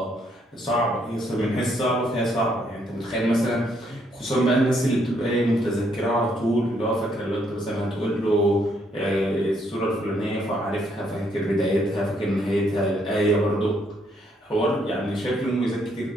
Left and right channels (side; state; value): both; normal; correlation 0.71